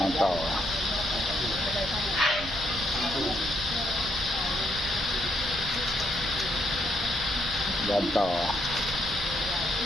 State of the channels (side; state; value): right; noise; rumble, 11 dB below the sound